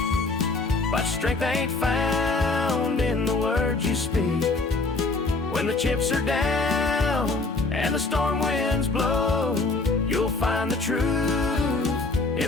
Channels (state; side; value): quieter; right; 3.5 dB